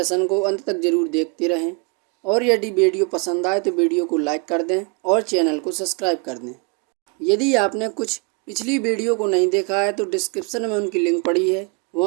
को अंत तक जरूर देखते रहें और यदि वीडियो पसंद आए तो वीडियो को लाइक कर दें और चैनल को सब्सक्राइब कर दें। यदि आपने कुछ पिछली वीडियो को नहीं देखा है तो डिस्क्रिप्शन में उनकी लिंक पड़ी है,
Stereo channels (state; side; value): quieter; left; 32.0 dB